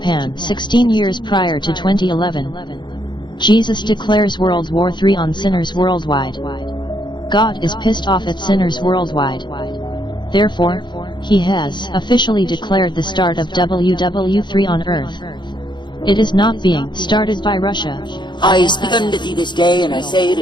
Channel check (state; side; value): late; right; 0.22 ms